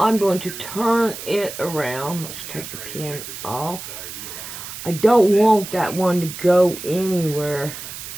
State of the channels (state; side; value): noise; right; hiss, 10 dB below the sound